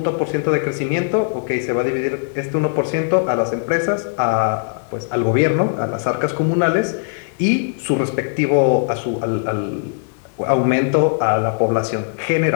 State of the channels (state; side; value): silent; right; digital silence